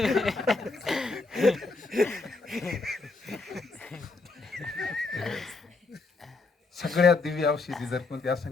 सगळ्यात दिव्य औषधी जर कोणती असेल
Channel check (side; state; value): right; quieter; 3.7 dB